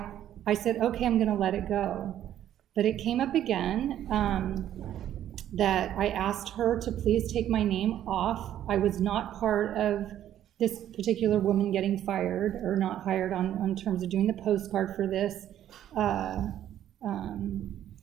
I said, okay, I'm gonna let it go. But it came up again that I asked her to please take my name off. I was not part of this particular woman getting fired or not hired on terms of doing the postcard for this.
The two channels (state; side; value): quieter; left; 11.3 dB